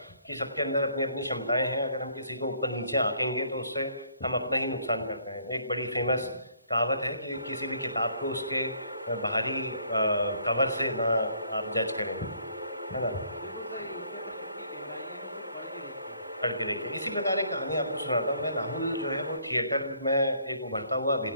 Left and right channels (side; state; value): both; inverted; correlation -0.63